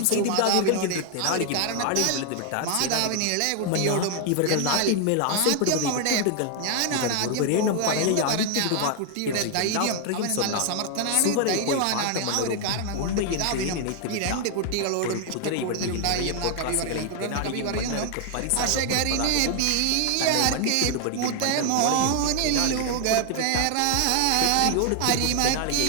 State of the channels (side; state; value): both; different; correlation 0.00